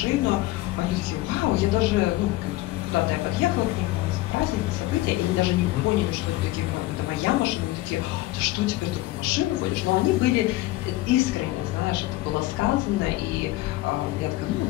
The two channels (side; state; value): right; quieter; 17.9 dB